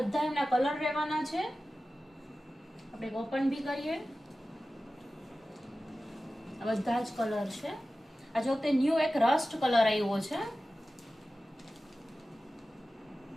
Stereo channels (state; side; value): normal; both; correlation 0.95